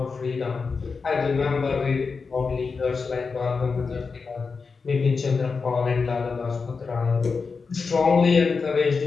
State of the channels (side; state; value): right; quieter; 4.8 dB